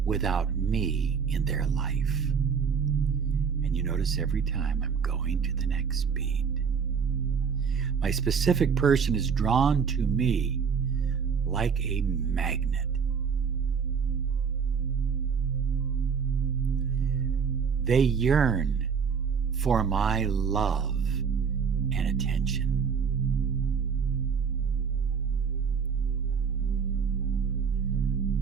without me in their life. And you notice every time I'm going to the next beat, my specific person is drawn to me like a magnet. They yearn for my love and attention.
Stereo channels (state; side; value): quieter; left; 6.3 dB